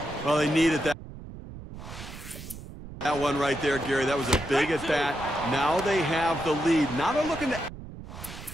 Well, they needed that. That one right there, Gary, that was a big at bat. Now they have the lead. Now they're looking to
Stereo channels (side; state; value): right; noise; rumble, 13 dB below the sound